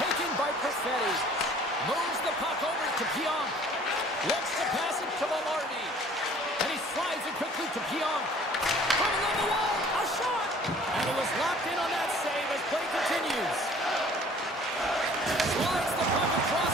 by Perfetti. Moves the puck over to Pionk. Looks to pass it to Velarde. And he slides it quickly to Pionk. Coming on the wall, a shot! And he was locked in on that save as play continues. Slides the puck across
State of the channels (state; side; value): normal; both; correlation 0.52